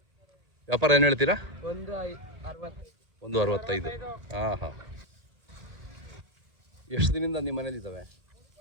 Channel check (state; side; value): late; left; 1.8 ms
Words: ವ್ಯಾಪಾರ ಏನು ಹೇಳ್ತೀರಾ? 165. ಹಾಂ ಹಾಂ. ಎಷ್ಟು ದಿನದಿಂದ ನಿಮ್ಮ ಮನೇಲಿದ್ದಾವೆ?